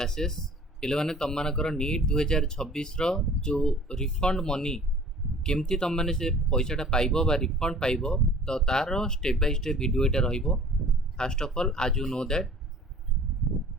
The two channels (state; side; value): normal; both; correlation 0.48